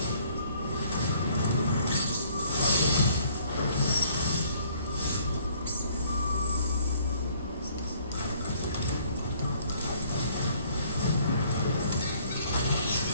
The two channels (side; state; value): both; inverted; correlation -0.60